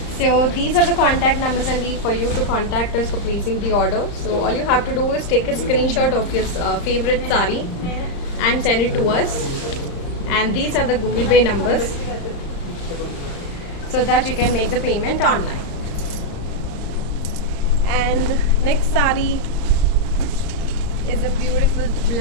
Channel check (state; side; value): late; right; 35 ms